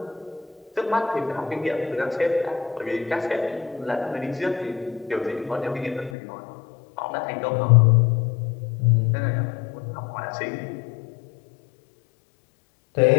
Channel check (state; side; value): drops out; right; at 6.2 s